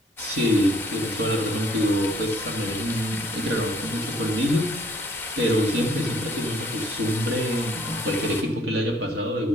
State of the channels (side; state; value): both; normal; correlation 0.62